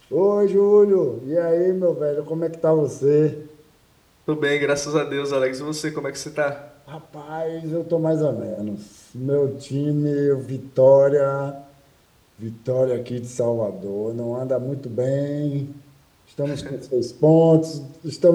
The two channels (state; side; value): identical; both; correlation 1.00